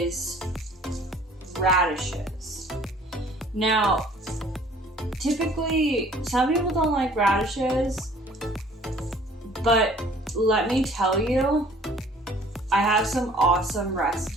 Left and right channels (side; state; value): both; normal; correlation 0.54